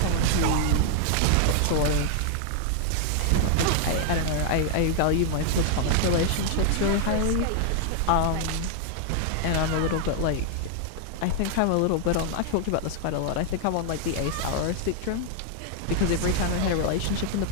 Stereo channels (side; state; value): both; different; correlation 0.00